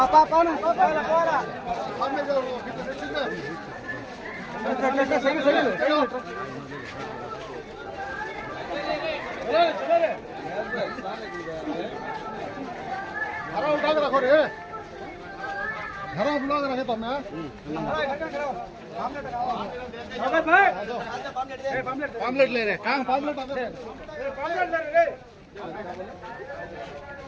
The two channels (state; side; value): identical; both; correlation 1.00